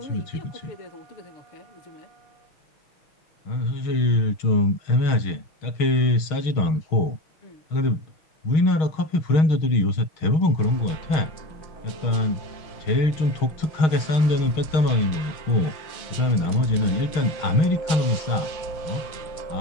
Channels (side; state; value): right; late; 6.4 ms